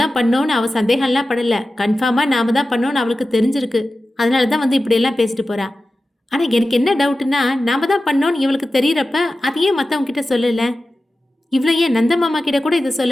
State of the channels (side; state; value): both; normal; correlation 0.94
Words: பண்ணோன்னு அவ சந்தேகம்லாம் படல, கன்ஃபார்மா நாம தான் பண்ணோன்னு அவளுக்கு தெரிஞ்சிருக்கு. அதனால தான் வந்து இப்படியெல்லாம் பேசிட்டு போறா. ஆனா எனக்கு என்ன டவுட்னா, நாம தான் பண்ணோன்னு இவளுக்கு தெரியறப்ப அதையே மற்றவங்க கிட்ட சொல்லல, இவ்வளோ ஏன் நந்த மாமா கிட்ட கூட இதை